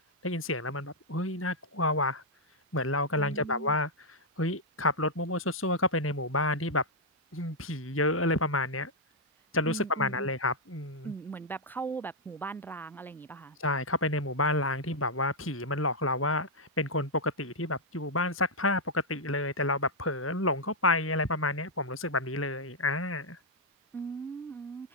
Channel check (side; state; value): both; normal; correlation -0.04